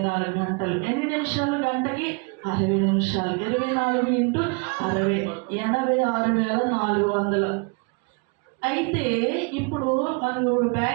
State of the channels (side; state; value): left; quieter; 31.9 dB